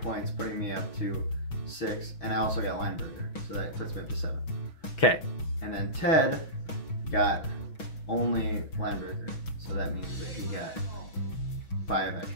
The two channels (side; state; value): right; late; 6.2 ms